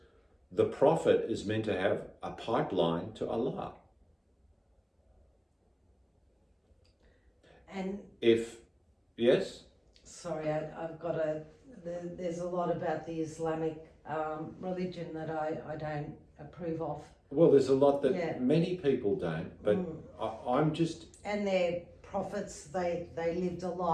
the Prophet is meant to have a pipeline to Allah. And yes? Sorry, there's a lot about the Islamic religion that I don't approve of. Well, there's a lot that many people don't, but I'm just... And their prophets, they lived a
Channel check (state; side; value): identical; both; correlation 1.00